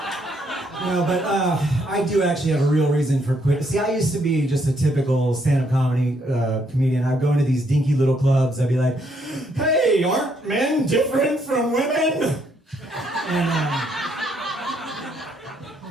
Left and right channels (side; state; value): both; normal; correlation 0.72